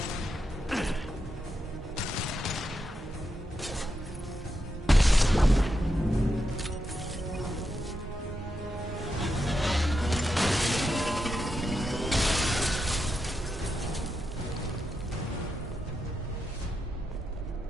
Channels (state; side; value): normal; both; correlation 0.85